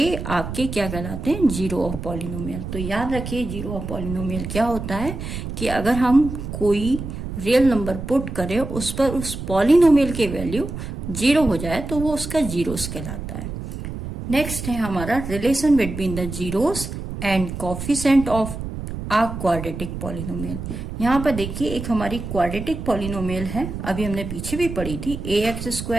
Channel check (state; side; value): noise; right; rumble, 7 dB below the sound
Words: आपके क्या कहलाते हैं, जीरो ऑफ पॉलिनोमियल। तो याद रखिए जीरो ऑफ पॉलिनोमियल क्या होता है कि अगर हम कोई रियल नंबर पुट करें उस पर उस पॉलिनोमियल की वैल्यू 0 हो जाए तो वो उसका जीरोस कहलाता है। नेक्स्ट है हमारा relation between the zeros and coefficient of a quadratic polynomial. यहाँ पर देखिए एक हमारी क्वाड्रेटिक पॉलिनोमियल है, अभी हमने पीछे भी पढ़ी थी,